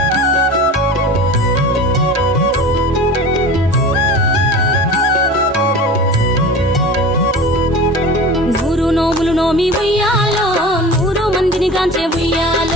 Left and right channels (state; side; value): normal; both; correlation 0.35